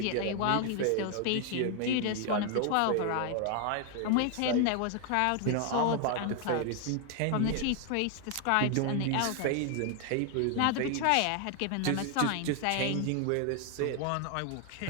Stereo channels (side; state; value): both; different; correlation 0.00